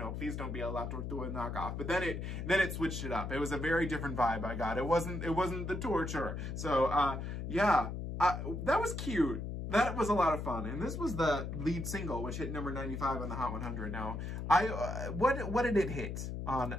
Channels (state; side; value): noise; left; hum, 5 dB below the sound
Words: please don't be a La Tortuga knockoff. But then it switched it up. It was a very different vibe I got. It wasn't the torture. So yeah, that was cute. That was a lot of fun. And this was the lead single, which hit number 95 on the Hot 100. Now, what did it hit